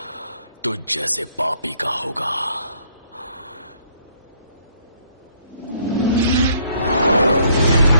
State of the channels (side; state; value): both; inverted; correlation -0.65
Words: तुझ जैसे पापी का होगा।